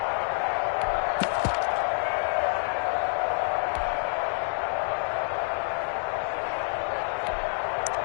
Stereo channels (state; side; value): silent; right; 58 dB below the other